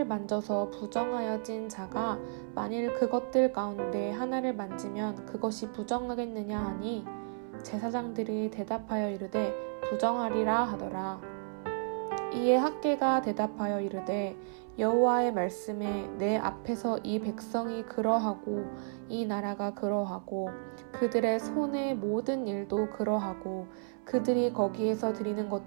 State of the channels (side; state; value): left; silent; 56 dB below the other